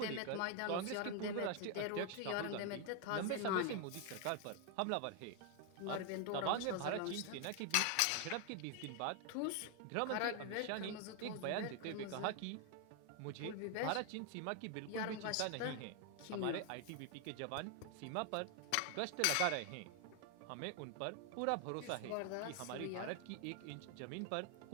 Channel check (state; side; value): different; both; correlation 0.00